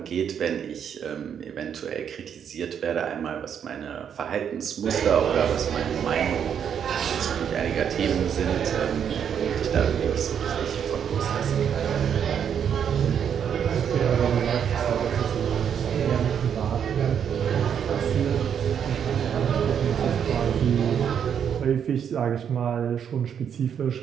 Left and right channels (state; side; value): quieter; left; 8.2 dB